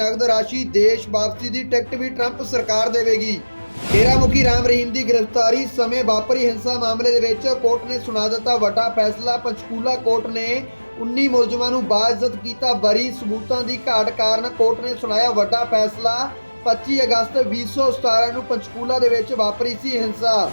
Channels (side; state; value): both; inverted; correlation -1.00